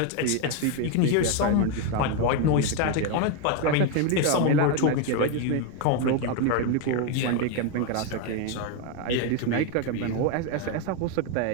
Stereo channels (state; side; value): different; both; correlation 0.02